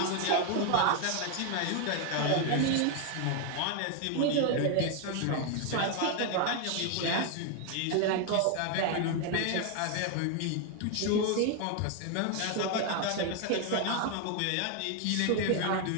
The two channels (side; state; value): both; different; correlation 0.01